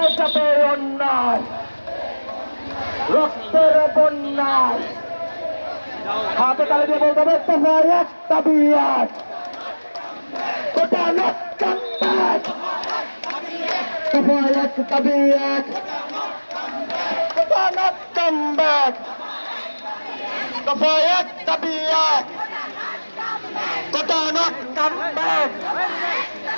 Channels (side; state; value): both; inverted; correlation -1.00